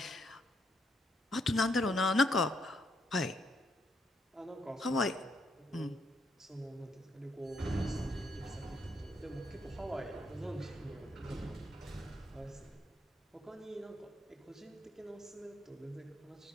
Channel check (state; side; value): normal; both; correlation 0.75